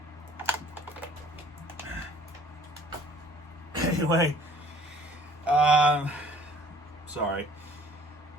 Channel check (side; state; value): both; normal; correlation 0.54